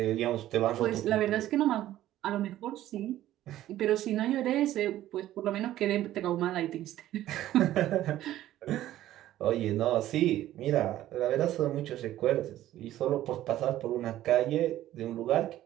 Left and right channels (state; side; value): quieter; left; 13.7 dB